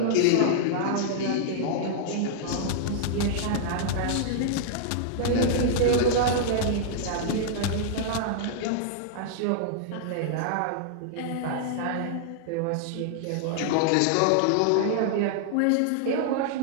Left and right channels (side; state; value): both; different; correlation -0.01